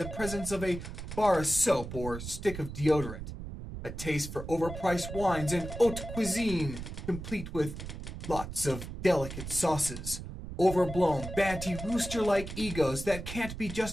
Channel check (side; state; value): right; noise; rumble, 9 dB below the sound